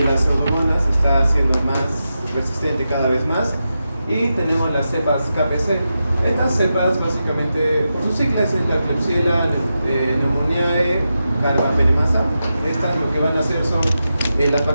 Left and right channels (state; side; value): inverted; both; correlation -0.89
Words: las pseudomonas está siendo más resistente cada vez más. Y tenemos las cepas KPC. Estas cepas básicamente, por sus siglas, es la Klebsiella pneumoniae carbapenemasa. Estas lo que van a hacer son, las